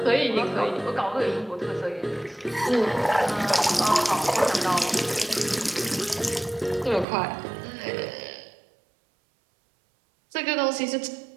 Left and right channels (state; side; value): drops out; left; at 7.1 s